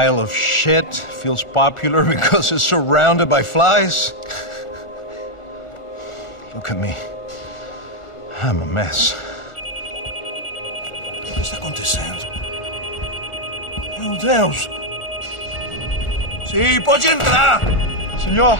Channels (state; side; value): late; right; 1.4 ms